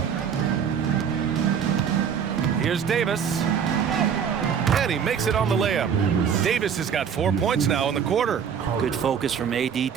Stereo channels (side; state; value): left; quieter; 7.5 dB